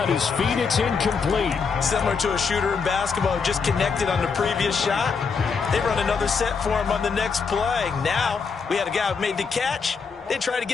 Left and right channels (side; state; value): right; quieter; 5.4 dB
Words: his feet, it's incomplete. Similar to a shooter in basketball who just connected on the previous shot. They run another set for him on the next play. Now, we had a guy who made the catch. They tried to